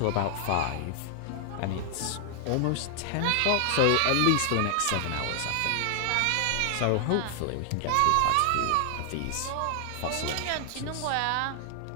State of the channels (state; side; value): different; both; correlation 0.00